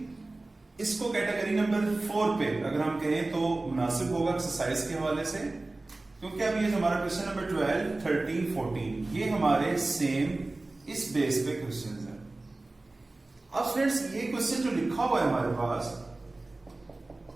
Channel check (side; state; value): left; quieter; 3.0 dB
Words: इसको कैटेगरी नंबर 4 पे अगर हम कहें तो मुनासिब होगा एक्सरसाइज के हवाले से, क्योंकि अब ये हमारा क्वेश्चन नंबर 12, 13, 14 ये हमारे सेम इस बेस पे क्वेश्चन है। अब स्टूडेंट्स ये क्वेश्चन जो लिखा हुआ है हमारे पास,